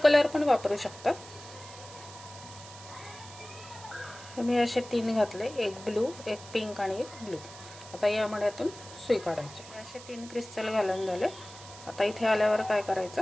पण वापरू शकतात। मी असे 3 घातले, 1 ब्लू, 1 पिंक आणि 1 ब्लू। आता या मण्यातून सुई काढायची। असे 3 क्रिस्टल घालून झाले। आता इथे आल्यावर काय करायचं,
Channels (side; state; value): right; noise; hiss, 17 dB below the sound